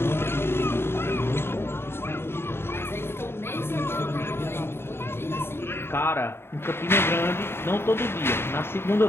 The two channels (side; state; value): right; late; 0.11 ms